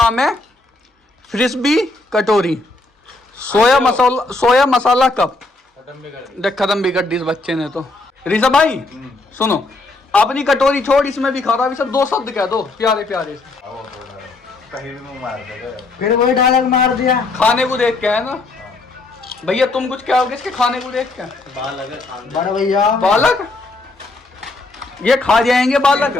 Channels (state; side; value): quieter; right; 3.2 dB